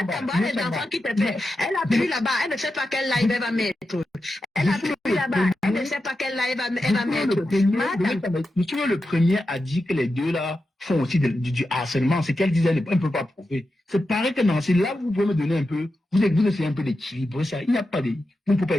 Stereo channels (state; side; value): normal; both; correlation 0.90